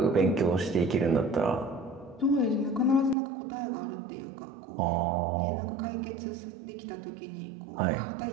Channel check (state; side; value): drops out; left; at 3.2 s